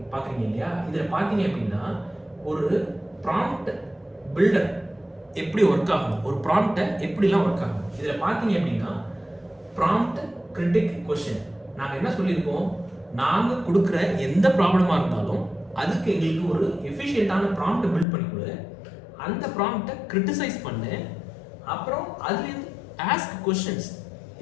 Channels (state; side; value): drops out; right; at 18.1 s